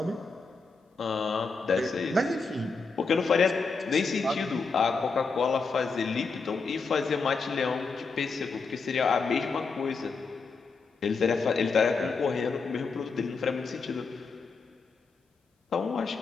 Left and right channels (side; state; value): right; quieter; 4.5 dB